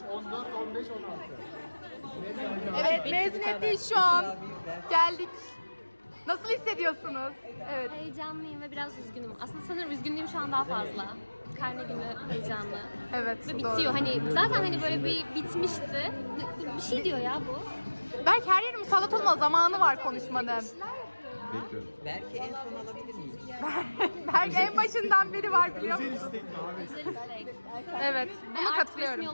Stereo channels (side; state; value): both; inverted; correlation -1.00